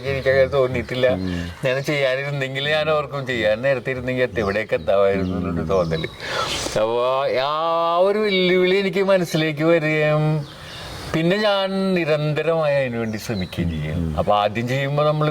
എനിക്കങ്ങനെ തോന്നിയിട്ടില്ല. ഞാൻ ചെയ്യാനിരുന്നെങ്കിൽ ഞാൻ ഓർക്കും ചെയ്യാൻ നേരത്തെ ഇരുന്നെങ്കിൽ എവിടെയൊക്കെ എത്താമായിരുന്നു എന്നുള്ളൊരു തോന്നല്. അപ്പൊ ആ ഒരു വെല്ലുവിളി എനിക്ക് മനസ്സിലേക്ക് വരികയും പിന്നെ ഞാൻ നിരന്തരമായി അതിനുവേണ്ടി ശ്രമിക്കുകയും ചെയ്യും. അപ്പൊ ആദ്യം ചെയ്യുമ്പോൾ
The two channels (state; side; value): identical; both; correlation 1.00